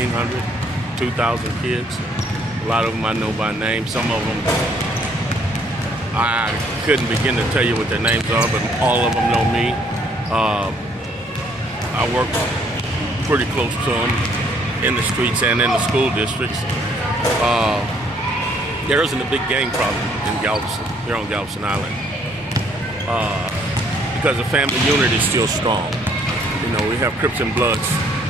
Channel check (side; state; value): both; normal; correlation 0.65